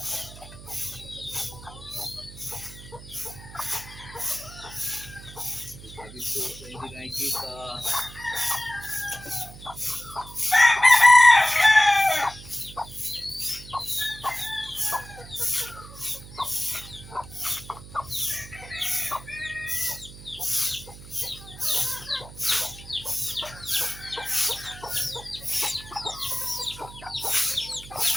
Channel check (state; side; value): noise; right; hum, 16 dB below the sound